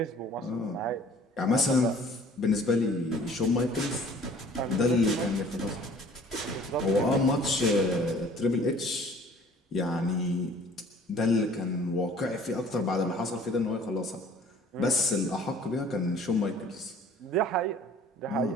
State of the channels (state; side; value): normal; both; correlation 0.52